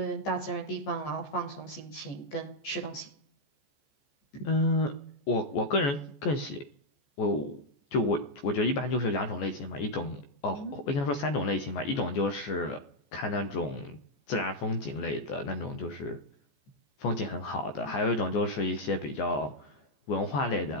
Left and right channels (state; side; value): late; right; 14 ms